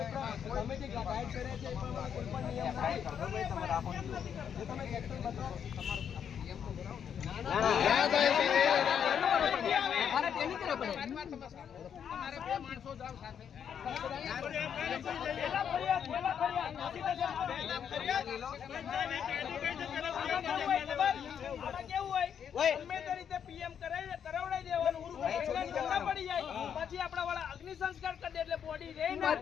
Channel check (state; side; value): quieter; right; 8.2 dB